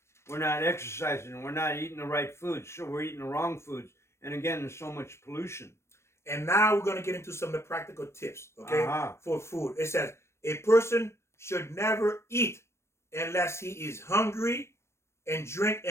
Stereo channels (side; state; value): right; late; 0.13 ms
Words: We're not exercising. We're not eating the right foods. So we're eating the wrong foods. And again, there's so much pollution. And now we're going to get into some of the practical tips, okay, Uh-huh. for food. It says a person should never eat unless he is hungry and drink